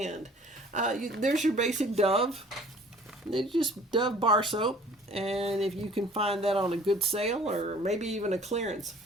There's your basic Dove. It's just Dove bar soap. And if you can find that on a good sale or maybe even a clearance.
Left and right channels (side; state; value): both; normal; correlation 0.51